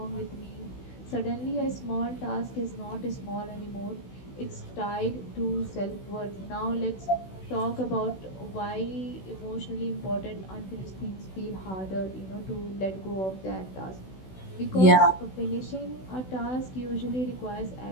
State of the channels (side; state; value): right; late; 16 ms